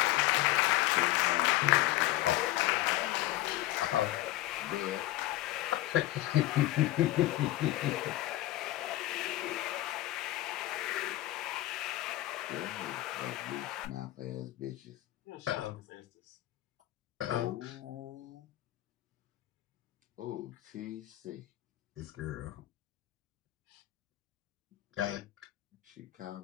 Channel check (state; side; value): quieter; right; 16.1 dB